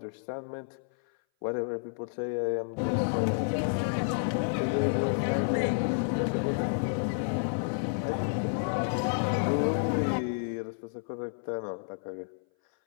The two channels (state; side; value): silent; right; 57 dB below the other